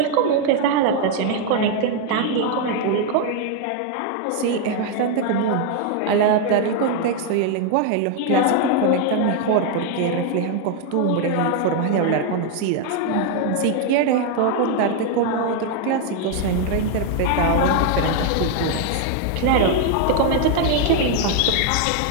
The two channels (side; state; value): both; different; correlation 0.00